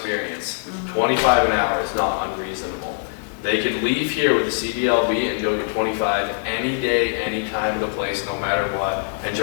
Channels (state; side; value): silent; right; digital silence